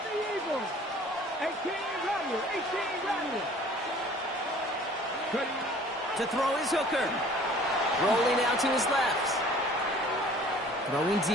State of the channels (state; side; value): normal; both; correlation 0.50